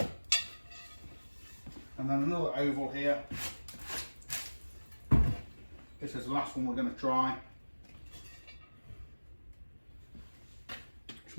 And then another oval here. This is the last one we're going to try. It's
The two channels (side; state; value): both; inverted; correlation -1.00